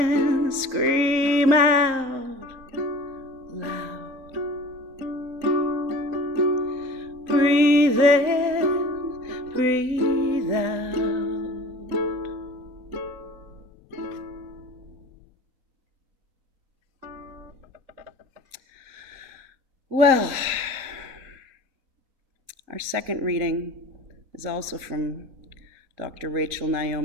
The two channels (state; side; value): late; left; 3.8 ms